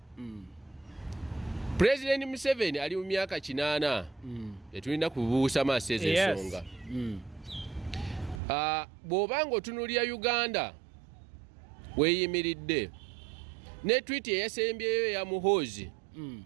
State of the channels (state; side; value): drops out; left; at 8.4 s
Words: President Museveni ali mu myaka 8 etulina kubuusa maaso ezo ensonga. Bw'obanga otunuulira Uganda weeyimiridde ne tweet eyasembyeyo ya Muhoozi